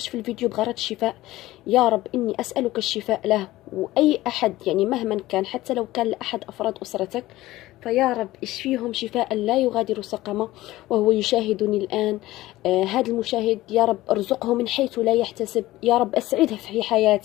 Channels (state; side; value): quieter; right; 17.0 dB